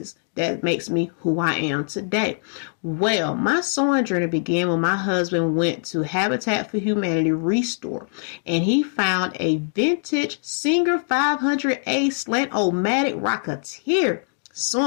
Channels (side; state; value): right; silent; digital silence